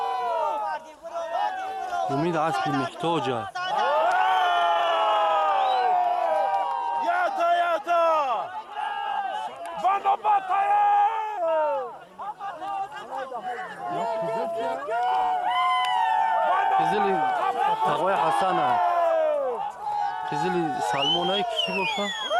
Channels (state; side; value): identical; both; correlation 1.00